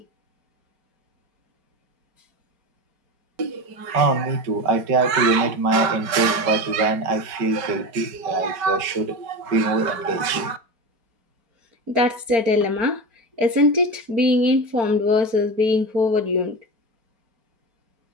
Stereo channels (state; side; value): late; left; 5.2 ms